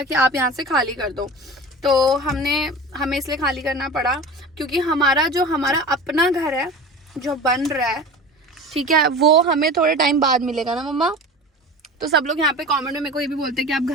कि आप यहाँ से खाली कर दो। तो हमें इसलिए खाली करना पड़ा क्योंकि हमारा अपना घर है जो बन रहा है, ठीक है, वो हमें थोड़े टाइम बाद मिलेगा ना मम्मा। तो सब लोग यहाँ पे कमेंट में मेरे को ये भी बोलते हैं कि आप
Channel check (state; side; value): normal; both; correlation 0.34